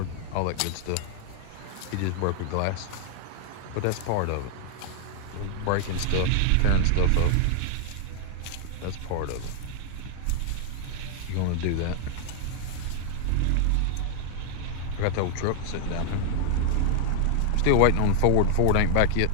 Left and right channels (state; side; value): different; both; correlation 0.00